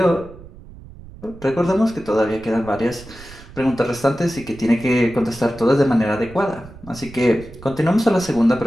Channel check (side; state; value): right; noise; rumble, 18 dB below the sound